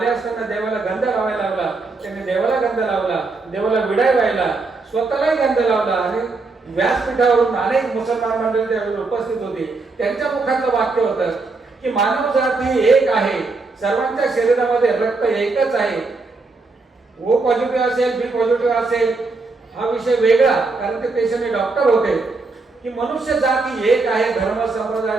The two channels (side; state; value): left; quieter; 3.8 dB